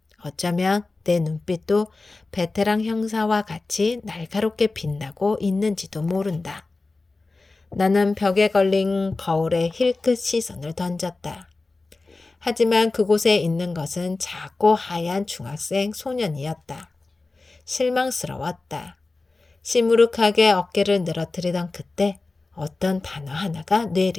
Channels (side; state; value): right; quieter; 3.5 dB